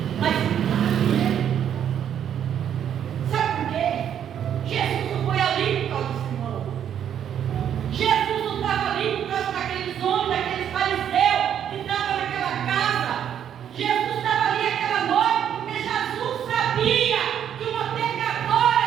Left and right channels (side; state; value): left; quieter; 9.4 dB